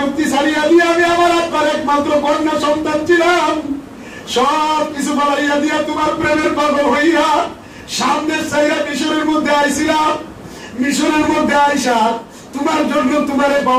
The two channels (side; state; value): both; identical; correlation 1.00